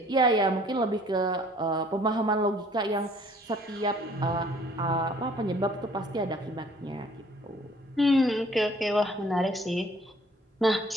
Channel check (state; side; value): normal; both; correlation 0.57